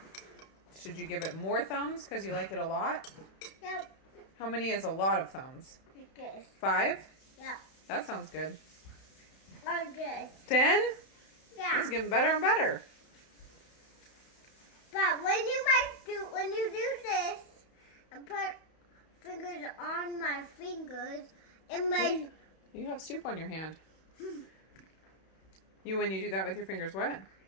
Should you give it more thumbs because you like it a lot? Yep. How many is a lot of thumbs? Good. 5? Yeah. That sounds good. Good. 10? Yeah. It's getting better and better. But when you do this and put fingers on my fingers, it makes... You have soup on your hand. When you do that with your fingers, what?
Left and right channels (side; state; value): right; late; 31 ms